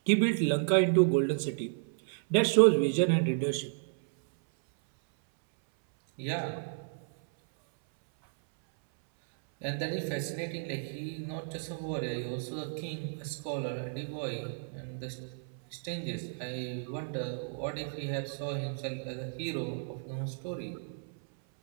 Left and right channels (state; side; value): silent; left; 56 dB below the other